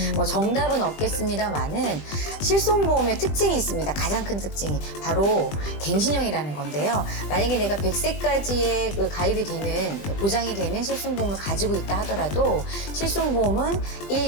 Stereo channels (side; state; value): right; late; 20 ms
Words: 뭐 정답은 없겠습니다만은 실손보험의 특징이 있습니다. 가장 큰 특징이 바로 갱신형이라는 건데요. 만약에 내가 100세까지의 그 가입이 되는 보장이 되는 실손보험을 가지고 있다 하더라도 실손보험은